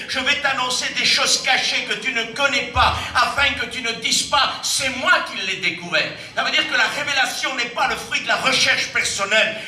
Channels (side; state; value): both; identical; correlation 1.00